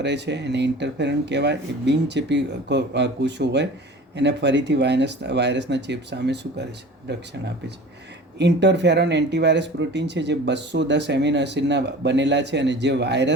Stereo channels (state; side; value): normal; both; correlation 0.40